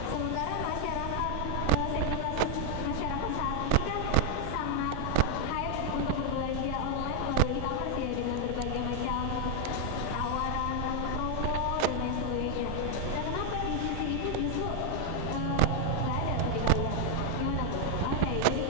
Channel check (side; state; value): both; different; correlation 0.00